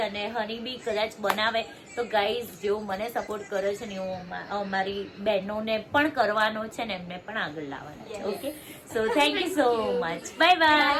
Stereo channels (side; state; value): both; identical; correlation 1.00